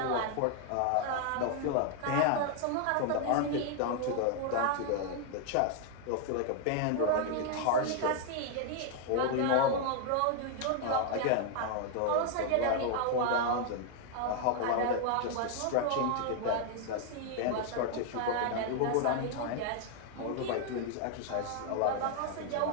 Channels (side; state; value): both; different; correlation 0.00